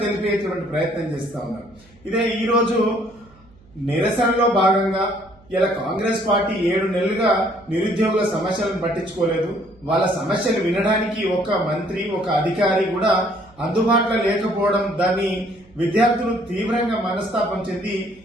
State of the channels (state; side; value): noise; right; hum, 28 dB below the sound